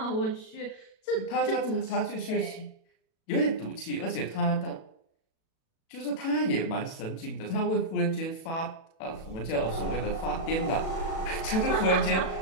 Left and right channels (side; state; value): right; late; 37 ms